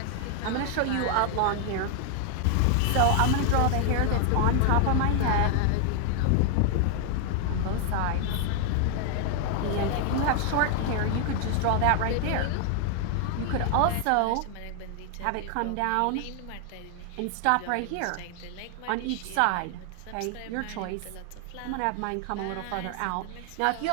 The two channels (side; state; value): both; different; correlation 0.00